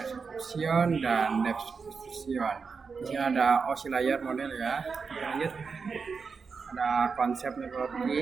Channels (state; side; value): quieter; left; 5.2 dB